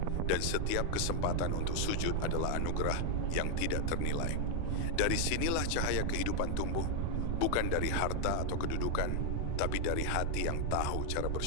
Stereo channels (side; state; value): both; different; correlation 0.00